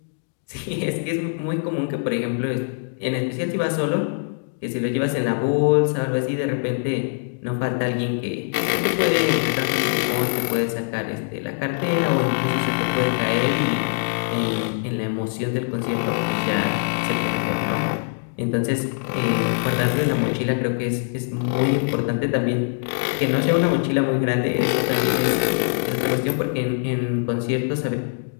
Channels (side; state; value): right; silent; digital silence